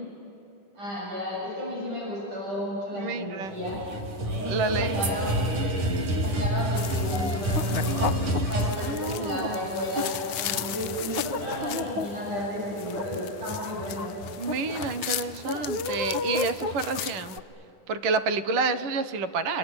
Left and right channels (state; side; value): late; left; 9.7 ms